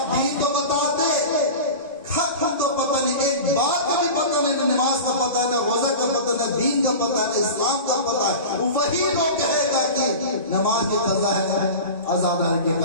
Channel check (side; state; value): both; inverted; correlation -0.31